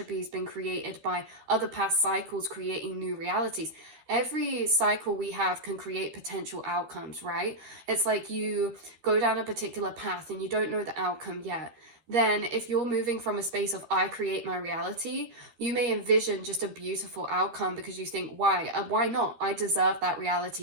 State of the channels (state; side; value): late; left; 13 ms